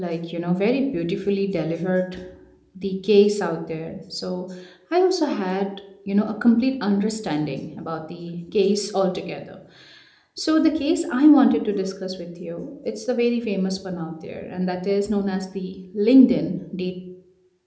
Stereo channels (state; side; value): identical; both; correlation 1.00